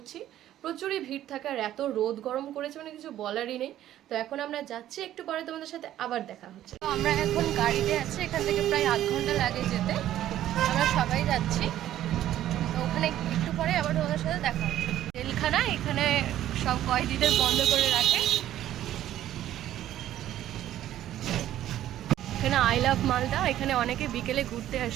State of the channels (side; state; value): left; quieter; 12.6 dB